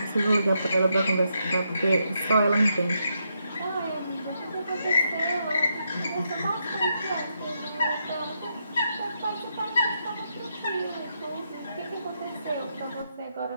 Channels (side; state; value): both; inverted; correlation -0.80